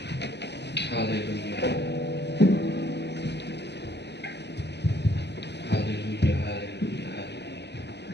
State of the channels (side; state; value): right; late; 0.50 ms